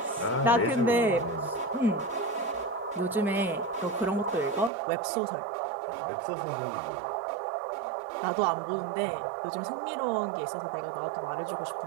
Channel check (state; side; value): drops out; left; at 4.7 s